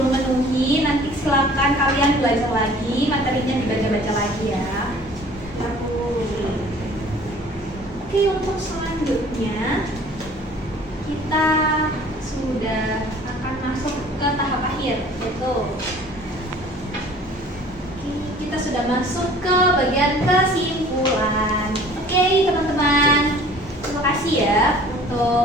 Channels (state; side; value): normal; both; correlation 0.50